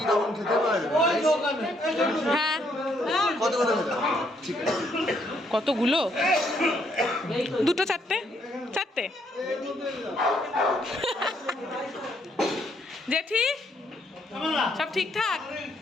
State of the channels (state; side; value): normal; both; correlation 0.71